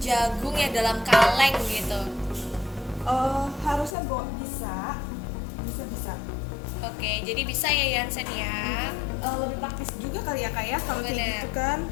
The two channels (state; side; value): drops out; right; at 4.0 s